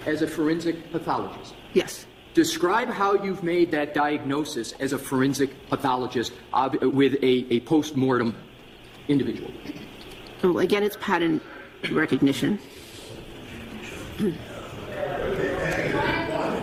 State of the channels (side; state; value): both; identical; correlation 1.00